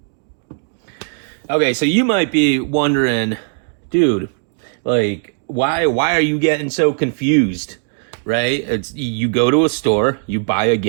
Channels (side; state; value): left; silent; 67 dB below the other